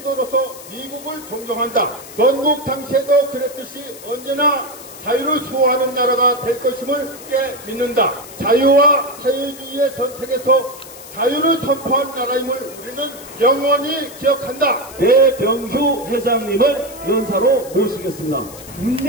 미국을 존경한다. 건국 당시에도 그랬듯이 언제나 자유를 수호하는 나라가 될 것임을 깨 믿는다. 자유와 사회주의의 선택에서 자유를 선포한 나라임을 우리는 영원히 기억한다. 배병휴 회장님을 연사로 모시겠습니다.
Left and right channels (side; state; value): left; noise; hiss, 16 dB below the sound